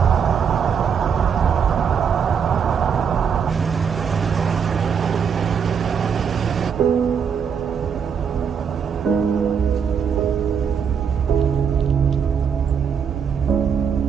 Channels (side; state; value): left; quieter; 7.0 dB